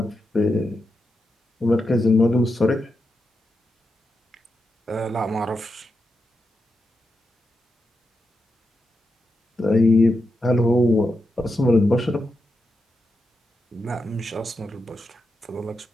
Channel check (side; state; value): both; normal; correlation 0.87